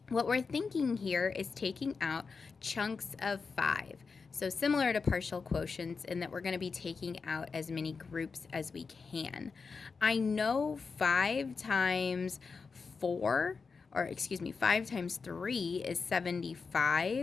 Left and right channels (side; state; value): right; quieter; 4.9 dB